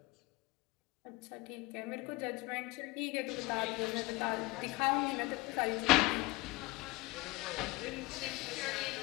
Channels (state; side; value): quieter; right; 22.0 dB